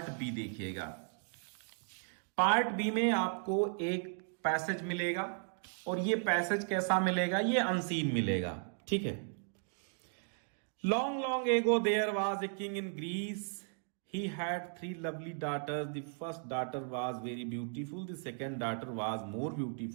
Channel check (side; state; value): left; silent; 54 dB below the other